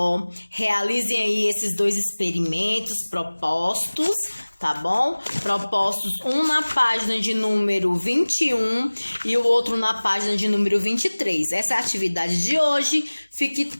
Realizem aí esses 2 experimentos propostos, tá bom? Propostos, um na página de número 21 e o outro na página de número 23. Essa é a atividade de hoje. Fiquem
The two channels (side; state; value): both; inverted; correlation -1.00